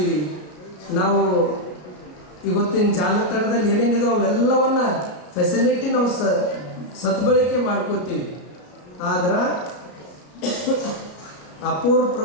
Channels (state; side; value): late; right; 33 ms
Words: ನಾವು ಇವತ್ತಿನ ಜಾಲತಾಣದಲ್ಲಿ ಏನೇನಿದೆ ಅವೆಲ್ಲವನ್ನ ಫೆಸಿಲಿಟಿ ನಾವು ಸದ್ಬಳಕೆ ಮಾಡ್ಕೋತೀವಿ. ಆದ್ರೆ ಅಪೂರ್ವ